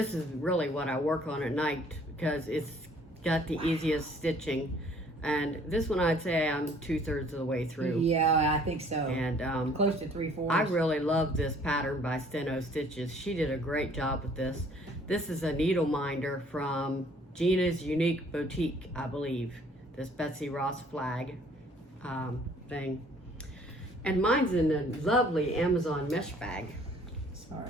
is really what I work on at night because it's got the easiest stitching. And this one, I'd say I'm 2/3 of the way through. Yeah, I think so. And close to 3/4. I really love this pattern by Steno Stitches. She did a great job with this. This is a needle minder from Gina's Unique Boutique, I believe. This Betsy Ross flag thing. And mine's in a lovely Amazon mesh bag.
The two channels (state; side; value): normal; both; correlation 0.58